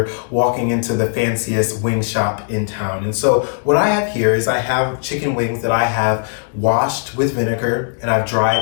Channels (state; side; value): silent; right; digital silence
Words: walking into the fanciest wing shop in town. And so what I have here is I have chicken wings that I have washed with vinegar and I've